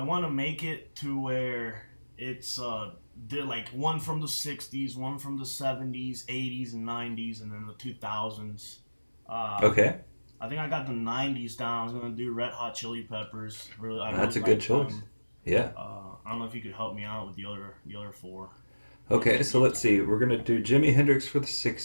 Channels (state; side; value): inverted; both; correlation -1.00